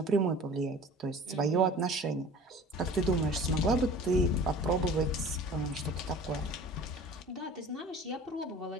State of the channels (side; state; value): both; normal; correlation 0.43